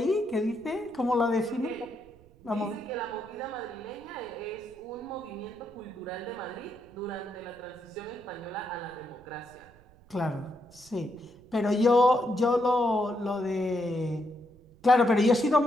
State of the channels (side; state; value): right; noise; rumble, 26 dB below the sound